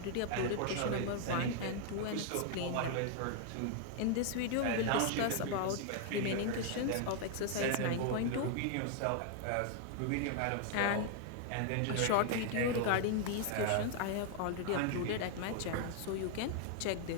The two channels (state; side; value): different; both; correlation 0.00